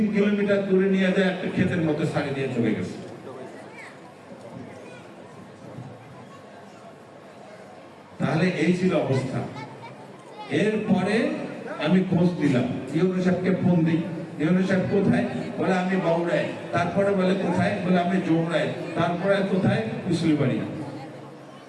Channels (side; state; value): both; identical; correlation 1.00